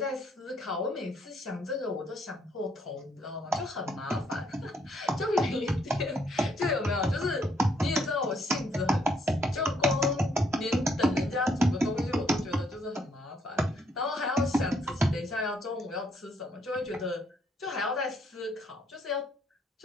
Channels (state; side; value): normal; both; correlation 0.70